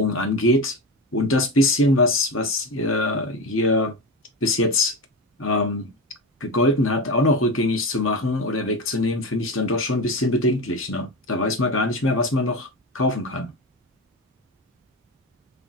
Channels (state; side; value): normal; both; correlation 0.21